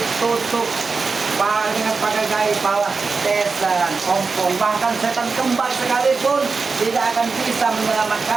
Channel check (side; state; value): left; quieter; 4.5 dB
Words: tutup dengan pakai gaya bawah tesan, ompong, bahkan setan kembar sekalipun tidak akan bisa